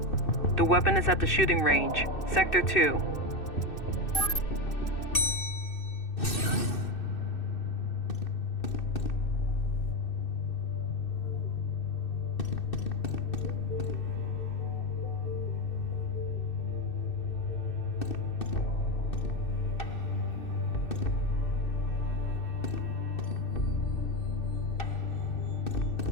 The weapon is at the shooting range, Sector 2.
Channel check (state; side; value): late; right; 2.6 ms